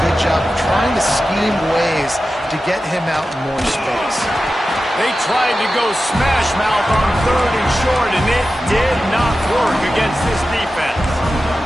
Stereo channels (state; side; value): normal; both; correlation 0.93